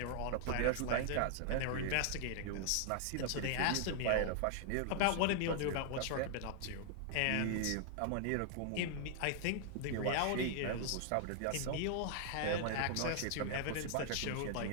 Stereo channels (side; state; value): both; different; correlation -0.01